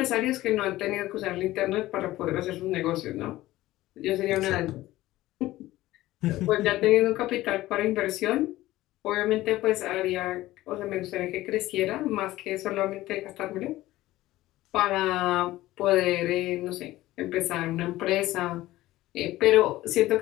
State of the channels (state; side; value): quieter; right; 16.6 dB